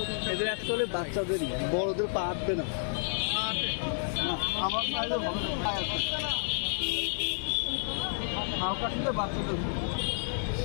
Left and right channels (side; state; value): right; silent; 57 dB below the other